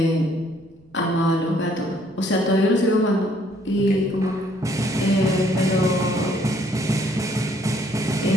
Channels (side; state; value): right; noise; rumble, 29 dB below the sound